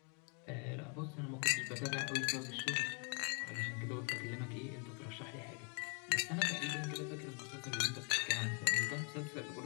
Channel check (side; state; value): right; quieter; 39.1 dB